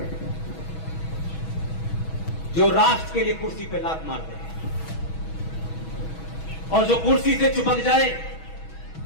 जो राष्ट्र के लिए कुर्सी पे लात मार दे, और जो कुर्सी से चिपक जाए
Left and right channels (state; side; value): late; right; 6.2 ms